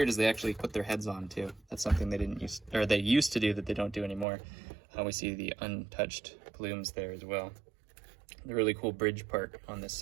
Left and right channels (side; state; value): left; drops out; at 4.2 s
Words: is they actually put their heads on too. That's something they used to do that they don't do anymore. We see the untouched plumes there as well. The really cool bridge part on this